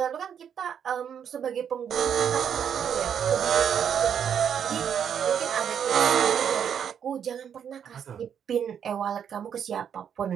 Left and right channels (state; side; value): quieter; left; 8.2 dB